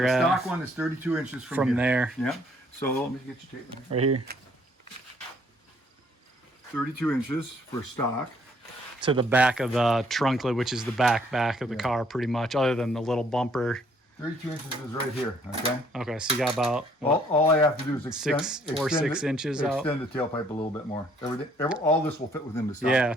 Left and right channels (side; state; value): both; normal; correlation 0.64